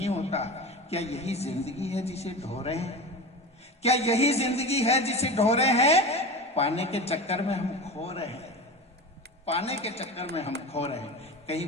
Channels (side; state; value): both; normal; correlation 0.28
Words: होता। क्या यही जिंदगी है जिसे ढो रहे हैं? क्या यही जिंदगी है जिसे ढो रहे हैं? पाने के चक्कर में हम खो रहे हैं, पाने के चक्कर में हम खो रहे हैं। कहीं